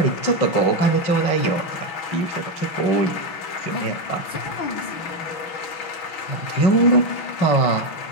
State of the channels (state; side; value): late; right; 6.0 ms